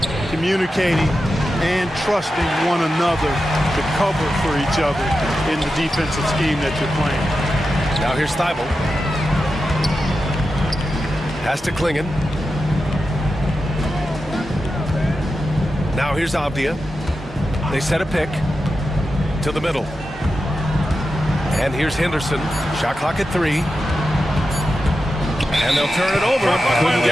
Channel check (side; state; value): both; normal; correlation 0.90